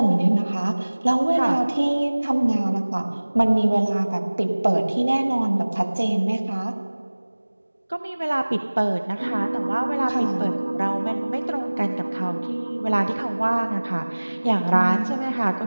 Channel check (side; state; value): both; inverted; correlation -1.00